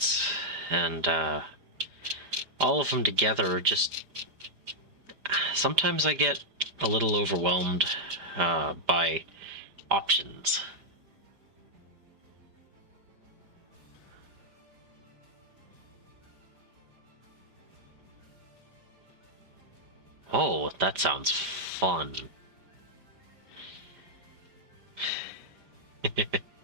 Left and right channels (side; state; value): left; late; 5.0 ms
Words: and all of them together just sometimes I get a little overwhelmed by options. Oh, that sounds fun.